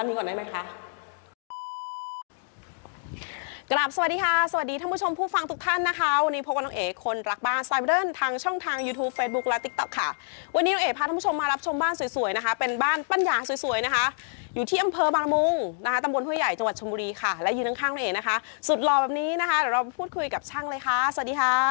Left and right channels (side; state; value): right; silent; digital silence